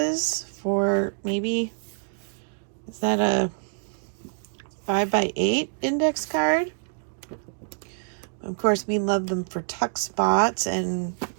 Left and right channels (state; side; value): silent; left; digital silence